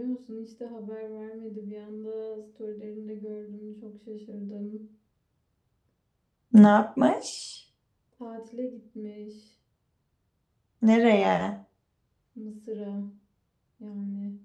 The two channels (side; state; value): both; identical; correlation 1.00